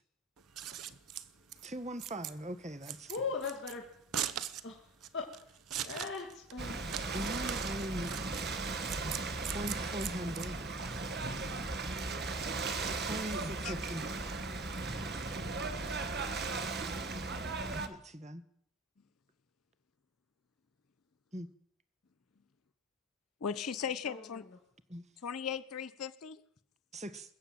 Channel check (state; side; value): normal; both; correlation 0.37